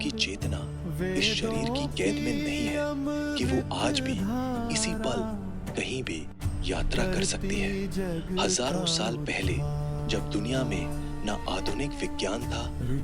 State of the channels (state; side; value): identical; both; correlation 1.00